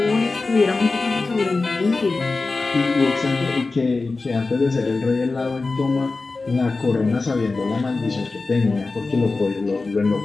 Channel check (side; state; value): right; quieter; 3.7 dB